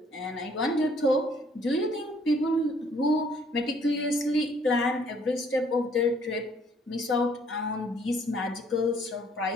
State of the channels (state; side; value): normal; both; correlation 0.63